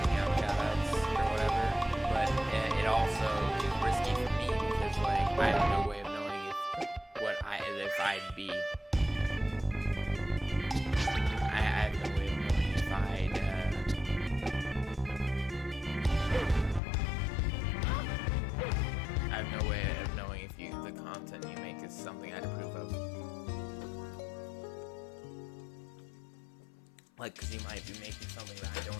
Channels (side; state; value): right; drops out; at 16.8 s